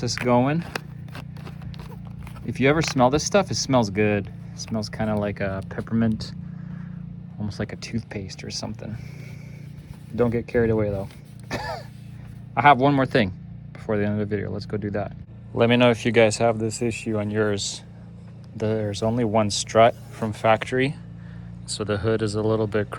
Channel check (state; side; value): identical; both; correlation 1.00